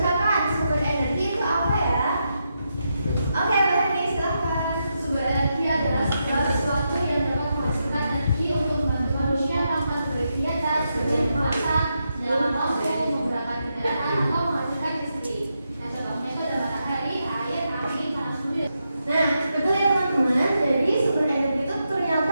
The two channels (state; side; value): inverted; both; correlation -0.85